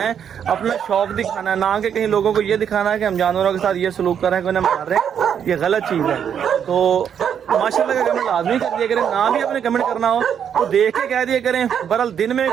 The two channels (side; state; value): left; quieter; 8.4 dB